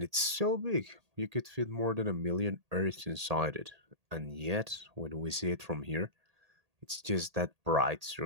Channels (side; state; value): left; late; 1.8 ms